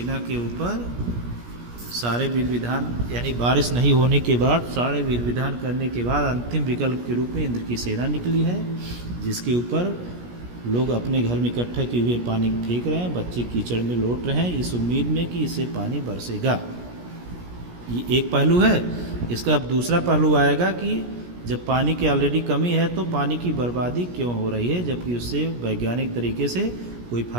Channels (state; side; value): late; left; 17 ms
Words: के ऊपर सारे विधि विधान, यानी बारिश नहीं होने के बाद सारे विधि विधान करने के बाद अंतिम विकल्प के रूप में इंद्र की सेना निकली है, जिसके ऊपर लोग अपने घर में इकट्ठा किए हुए पानी फेंक रहे हैं, बच्चे कीचड़ में लौट रहे हैं इस उम्मीद में कि इससे पानी बरसेगा। ये एक पहलू है। इसका अब दूसरा पहलू आएगा कि जब पानी की ऑलरेडी कमी है तो पानी की बर्बादी क्यों हो रही है, जबकि उससे वैज्ञानिक तरीके से कोई